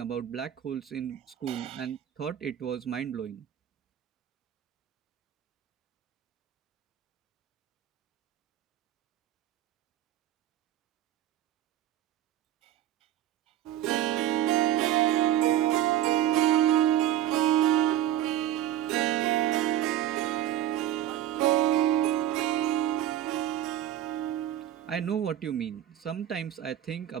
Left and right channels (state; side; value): quieter; left; 12.1 dB